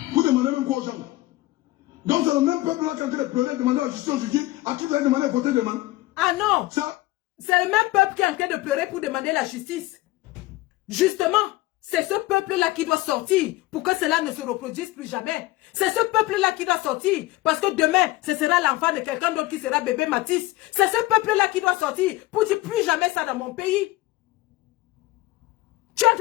Vous demandez même quoi aux gens? Donc c'est le même peuple là qui a pleuré, demander à la justice aujourd'hui, à qui vous avez demandé de voter demain? Ah non! C'est le même peuple qui est en train de pleurer pour demander la justice. Justement, c'est ce peuple-là qui doit sortir pour que cela ne se reproduise plus jamais. C'est ce peuple-là qui doit sortir parce que demain, ce sera l'enfant de quelqu'un d'autre qui sera bébé Mathis. C'est ce peuple-là qui doit sortir pour dire plus jamais ça dans mon pays. Tu es en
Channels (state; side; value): quieter; right; 18.8 dB